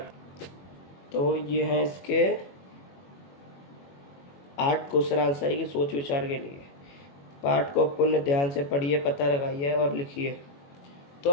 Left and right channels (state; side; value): late; right; 21 ms